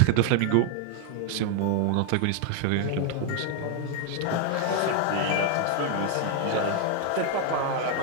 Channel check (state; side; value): different; both; correlation 0.00